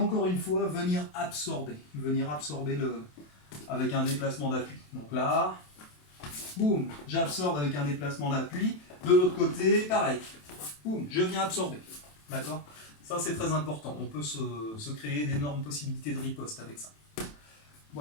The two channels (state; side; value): late; right; 27 ms